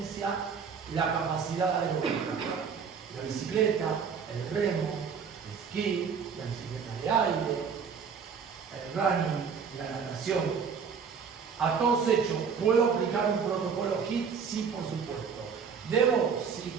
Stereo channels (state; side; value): quieter; left; 6.3 dB